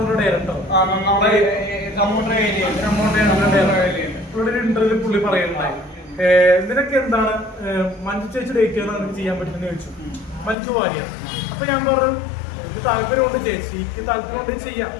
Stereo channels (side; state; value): right; drops out; at 10.6 s